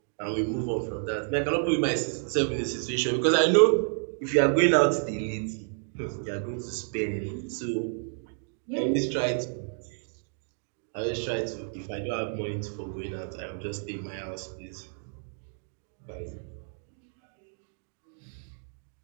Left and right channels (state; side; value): silent; left; 58 dB below the other